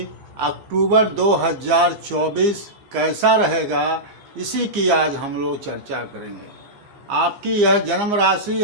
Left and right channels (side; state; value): left; late; 15 ms